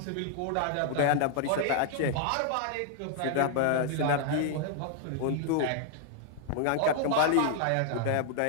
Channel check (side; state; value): both; different; correlation 0.00